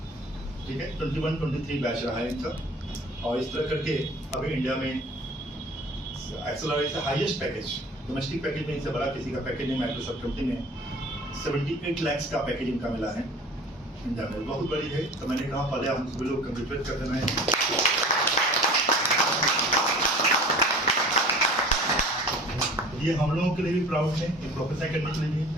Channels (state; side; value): normal; both; correlation 0.42